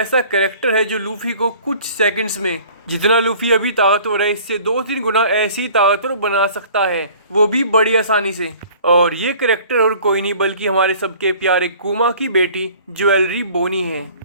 कैरेक्टर है जो लूफी को कुछ सेकंड्स में, जितना लूफी अभी ताकतवर है इससे 2-3 गुना ऐसी ताकतवर बना सकता है, वो भी बड़ी आसानी से। और ये कैरेक्टर और कोई नहीं बल्कि हमारे सबके प्यारे कुमा की बेटी ज्वेलरी बोनी है।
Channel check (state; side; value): inverted; both; correlation -0.49